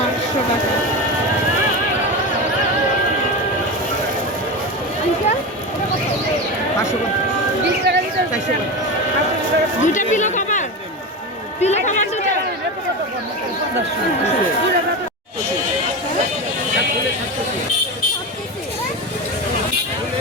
800 টাকা। আঙ্কেল, এটা কত? 20 টাকা দিতে হবে। দুইটা পিলো কভার? পিলো কভার দুটো?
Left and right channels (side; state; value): both; normal; correlation 0.22